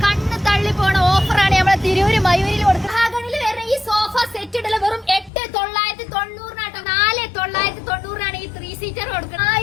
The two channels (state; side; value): drops out; right; at 5.3 s